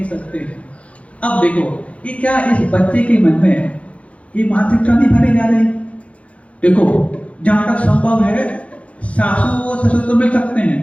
सकते हैं। अब देखो, ये क्या इस बच्चे के मन में ये मानसिकता नहीं भरी जा रही? देखो, जहां तक संभव है सासू और ससुर तो मिल सकते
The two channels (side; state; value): right; late; 0.063 ms